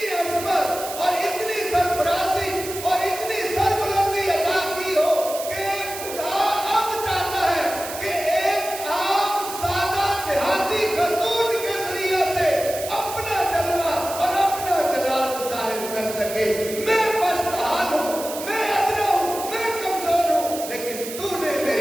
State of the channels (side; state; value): right; noise; hiss, 9 dB below the sound